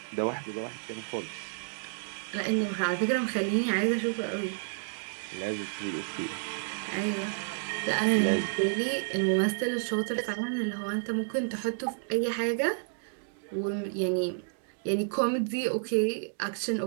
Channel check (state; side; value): silent; left; digital silence